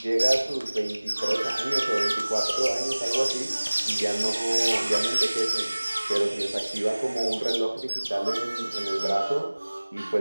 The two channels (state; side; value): inverted; both; correlation -1.00